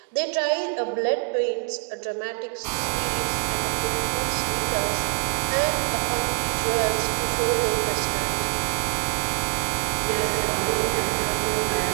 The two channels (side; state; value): left; silent; digital silence